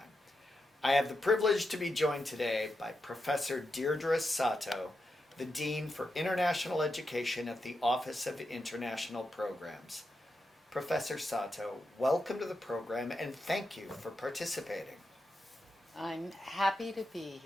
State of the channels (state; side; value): normal; both; correlation 0.87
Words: I have the privilege to be joined today by Professor Deirdre Sato, the Dean for International Education at the Office of International Programs. Professor Sato, welcome to the program and thank you for participating. I'm happy to be